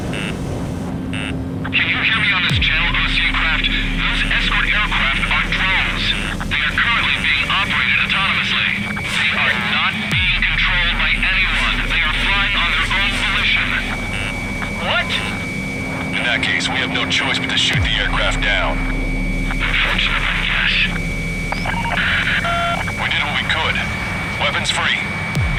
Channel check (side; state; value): both; identical; correlation 1.00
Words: Can you hear me on this channel, Osean craft? Those escort aircraft are drones. They are currently being operated autonomously. They are not being controlled by anyone. They are flying on their own volition. What? In that case, we have no choice but to shoot the aircraft down. Unfortunately, yes. We did what we could. Weapons free.